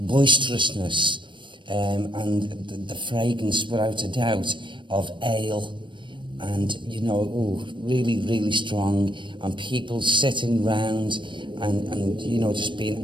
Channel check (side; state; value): left; late; 0.23 ms